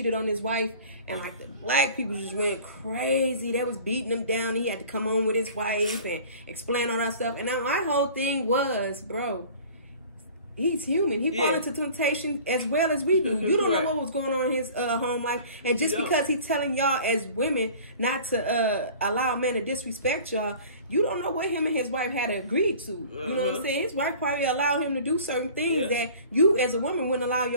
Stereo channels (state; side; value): inverted; both; correlation -0.45